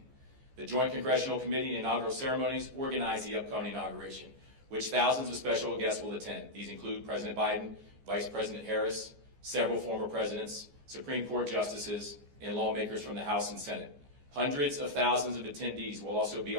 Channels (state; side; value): late; left; 14 ms